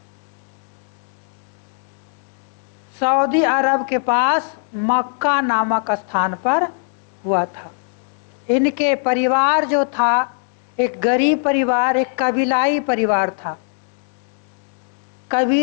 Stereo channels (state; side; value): silent; right; 65 dB below the other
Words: अरब के पास मक्का नामक स्थान पर हुआ था। इनके परिवार जो था एक गरीब परिवार, एक कबीलाई परिवार था।